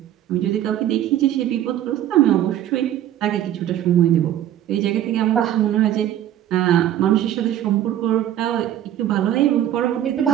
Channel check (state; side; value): quieter; left; 11.8 dB